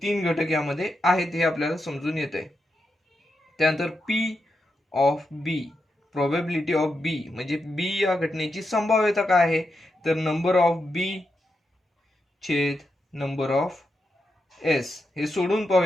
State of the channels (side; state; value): both; normal; correlation 0.86